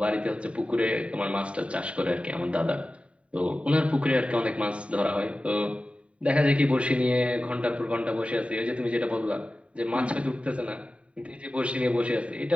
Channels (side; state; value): left; late; 0.062 ms